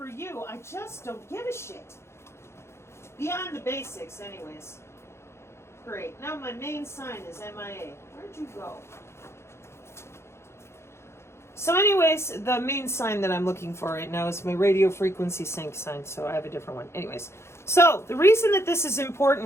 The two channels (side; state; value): right; late; 0.13 ms